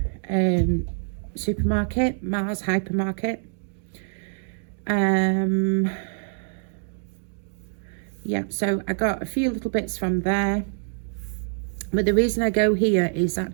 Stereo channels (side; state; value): left; silent; digital silence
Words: supermarket, Mars Hypermarket. Yeah, so I got a few little bits from there. But the reason I go here is